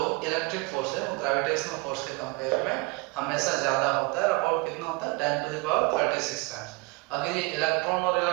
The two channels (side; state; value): left; quieter; 25.7 dB